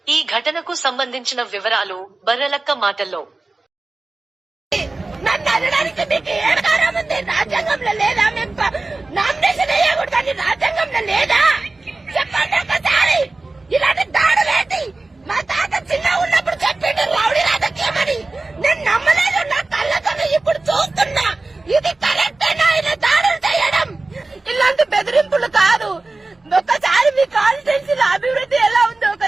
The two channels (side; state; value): left; quieter; 3.3 dB